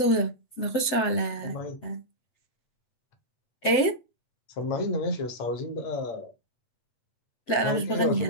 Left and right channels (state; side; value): late; right; 7.9 ms